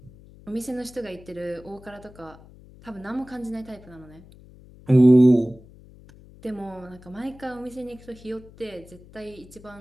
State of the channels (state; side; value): noise; left; hum, 22 dB below the sound